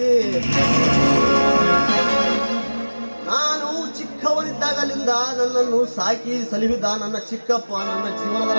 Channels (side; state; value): both; inverted; correlation -1.00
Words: ನಾನು ಚಿಕ್ಕವನಿದ್ದಾಗಲಿಂದ ನನ್ನನ್ನು ಸಾಕಿ ಸಲಹಿದ ನನ್ನ ಚಿಕ್ಕಪ್ಪ ನನ್ನ ಜೀವನದ